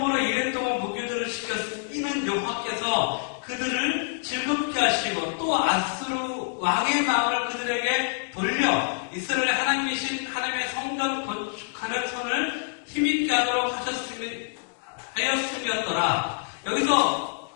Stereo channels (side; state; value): right; silent; digital silence